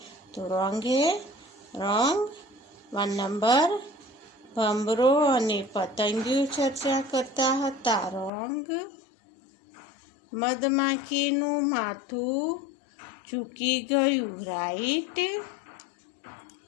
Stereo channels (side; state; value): right; drops out; at 8.3 s